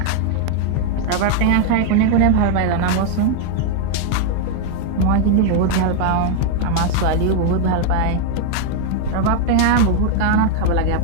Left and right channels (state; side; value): different; both; correlation 0.00